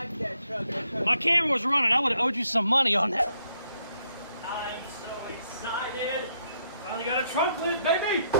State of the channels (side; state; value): both; inverted; correlation -0.74